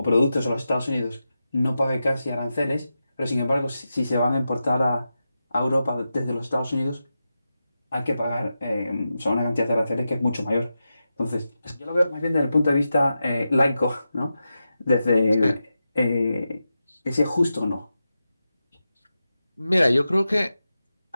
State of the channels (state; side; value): inverted; both; correlation -0.90